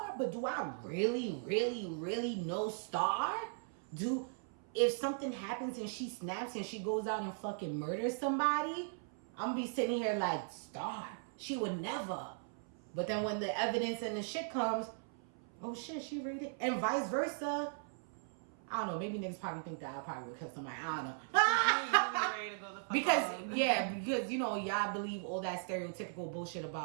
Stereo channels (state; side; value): silent; left; 52 dB below the other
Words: but do I really, really, really know Star? If something happens and she snaps and she goes out and fucking murders somebody, I'm gonna be sitting here like, Star, she would never. But then when the evidence and the shit comes, oh shit, she read it. And vice versa. I don't know, maybe niggas probably think that I probably would kill somebody. I don't know. Ready to go the fuck because, you know, y'all believe all that stereotypical bullshit